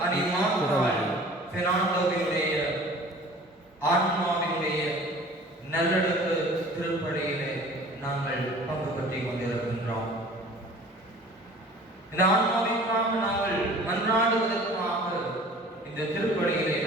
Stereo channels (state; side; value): normal; both; correlation 0.46